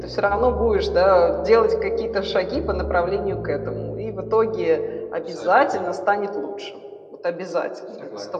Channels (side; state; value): both; identical; correlation 1.00